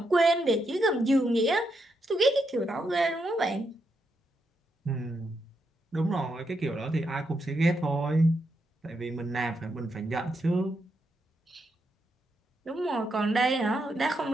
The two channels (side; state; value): both; normal; correlation 0.81